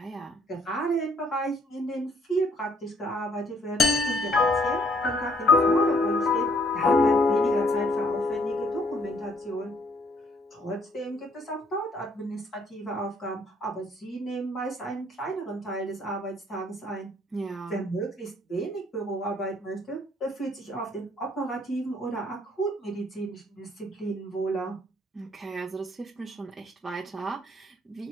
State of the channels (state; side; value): normal; both; correlation 0.64